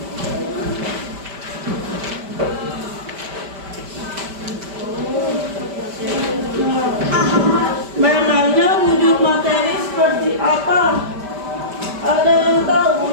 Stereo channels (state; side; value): late; left; 5.1 ms